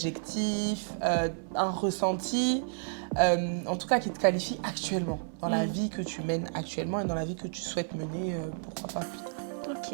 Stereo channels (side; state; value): left; silent; 57 dB below the other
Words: un ressenti, en tout cas qui te qualifie actuellement, dans la vie que tu mènes actuellement et dans la vie que tu souhaites mener, pourquoi pas plus tard.